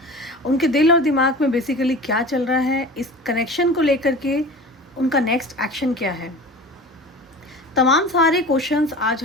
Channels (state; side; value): normal; both; correlation 0.37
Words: उनके दिल और दिमाग में बेसिकली क्या चल रहा है, इस कनेक्शन को लेकर के उनका नेक्स्ट एक्शन क्या है। तमाम सारे क्वेश्चंस आज